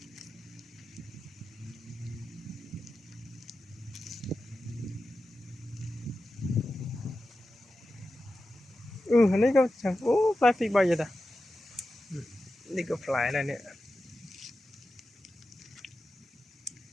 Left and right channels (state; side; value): normal; both; correlation 0.92